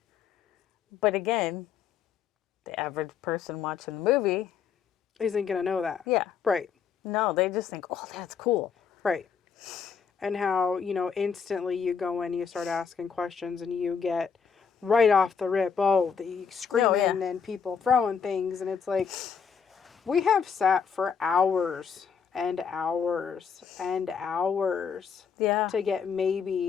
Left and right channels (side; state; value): right; quieter; 6.6 dB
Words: But again, the average person watching the movie isn't gonna know that. Yeah. Right. No, they just think, oh, that's cool. Right. And how, instantly you go in, you start asking questions, and you get right off the rip, oh, the Oh, screaming yeah. and people throwing things. And it's like, we have sat for hours and hours and hours Yeah. to get